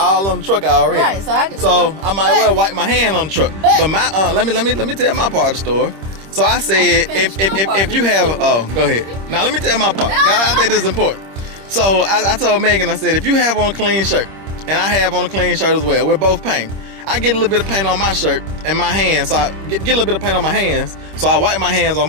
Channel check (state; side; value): late; left; 26 ms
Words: on the truck already. Right, so I might well wipe my hand on the truck. But my let me tell my part of the story. So I said, if you have, go ahead. Now let me tell my part. I think this is important. So I told Megan, I said, if you have on a clean shirt, and I have on a clean shirt as well, we're both painted. I get a little bit of paint on my shirt and my hands, so I get a little bit of paint on my hands, so I wipe my hands on